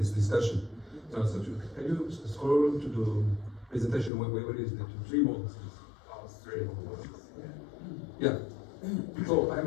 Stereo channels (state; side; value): drops out; right; at 4.1 s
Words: discussion. So can you scroll to the presentation? Where is the three models? Oh, three. Yeah. So